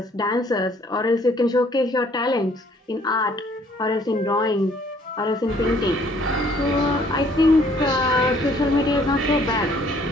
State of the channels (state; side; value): normal; both; correlation 0.61